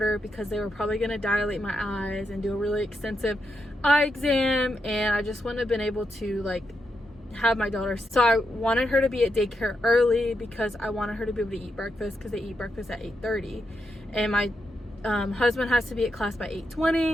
because they were probably going to dilate my eyes and do a really extensive eye exam, and I just wouldn't have been able to like have my daughter. So I wanted her to be at daycare early because I wanted her to be able to eat breakfast, because they eat breakfast at 8:30, and my husband has to be at class by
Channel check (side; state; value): both; normal; correlation 0.84